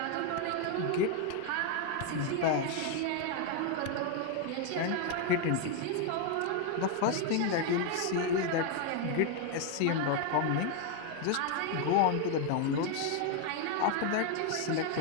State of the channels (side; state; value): both; different; correlation 0.01